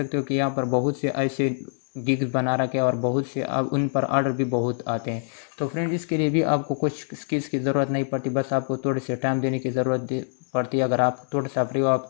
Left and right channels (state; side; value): silent; right; digital silence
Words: हो कि यहाँ पर बहुत से ऐसे गिग्स बना रखे और बहुत से अब उन पर ऑर्डर भी बहुत आते हैं। तो फ्रेंड इसके लिए भी आपको कुछ स्किल्स की ज़रूरत नहीं पड़ती, बस आपको थोड़े से टाइम देने की ज़रूरत पड़ती है। अगर आप थोड़ा सा फ्री हो,